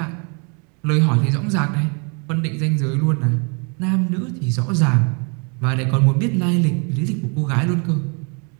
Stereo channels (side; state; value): left; quieter; 35.7 dB